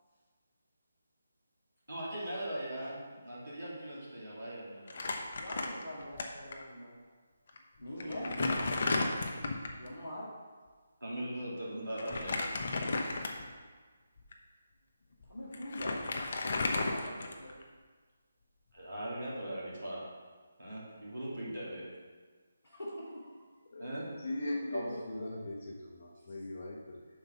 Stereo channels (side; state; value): both; inverted; correlation -0.87